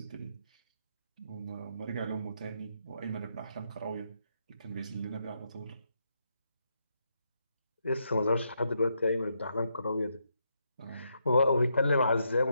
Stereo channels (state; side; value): inverted; both; correlation -0.80